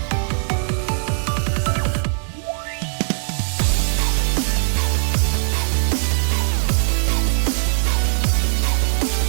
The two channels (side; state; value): left; silent; digital silence